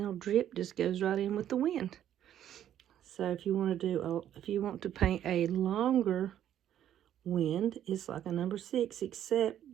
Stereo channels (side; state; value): left; quieter; 10.9 dB